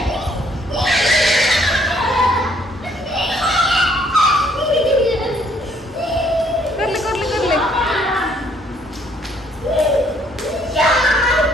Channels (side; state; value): both; normal; correlation 0.65